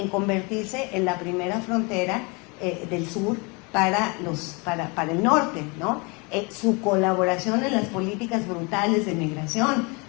convertirse en la primera frontera del sur para el norte, ¿no? Su colaboración en las políticas brutales de migración,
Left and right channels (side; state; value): right; quieter; 29.6 dB